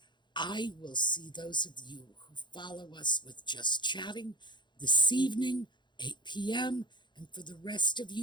I will see those of you who follow us with Just Chatting this evening, 8 p.m., and for the rest of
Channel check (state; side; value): late; right; 0.22 ms